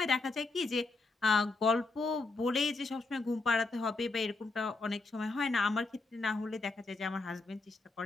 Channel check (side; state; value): right; quieter; 3.6 dB